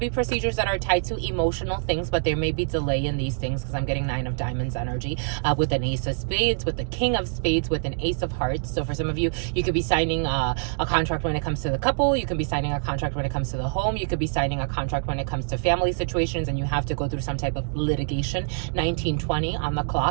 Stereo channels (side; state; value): left; silent; digital silence